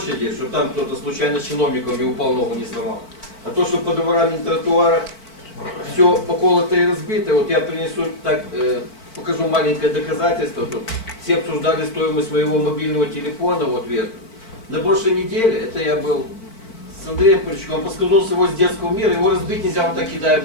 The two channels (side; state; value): right; late; 4.5 ms